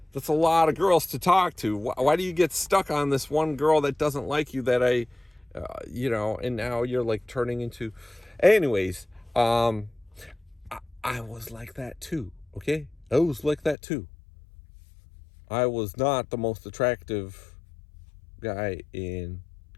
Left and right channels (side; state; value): right; drops out; at 13.8 s